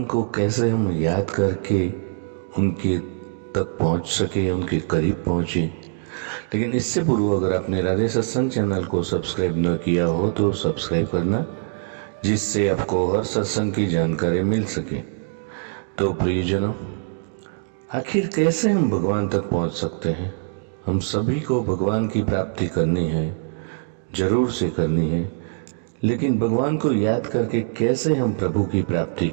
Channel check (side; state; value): left; silent; digital silence